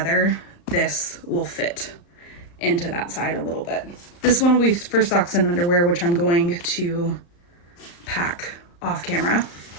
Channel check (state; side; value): late; right; 35 ms